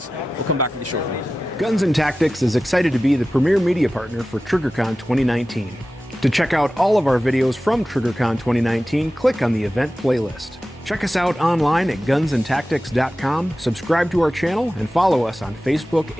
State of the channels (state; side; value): normal; both; correlation 0.95